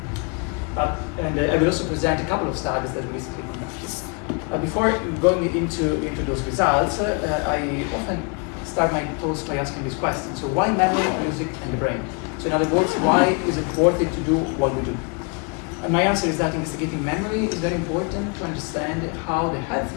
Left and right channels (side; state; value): right; quieter; 35.3 dB